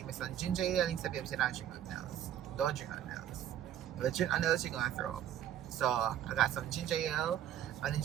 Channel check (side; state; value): left; quieter; 10.9 dB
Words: me some ginger ale, and he said, babe, don't drink nothing else. Don't drink nothing else. If you drink nothing else, you're gonna throw up. So I got some ginger ale, and